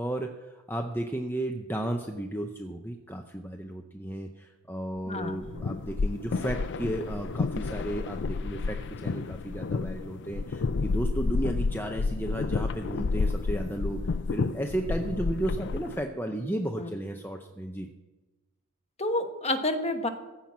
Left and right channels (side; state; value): both; normal; correlation 0.72